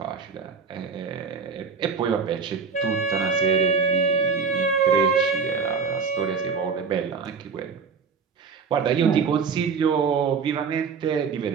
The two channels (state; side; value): quieter; left; 5.5 dB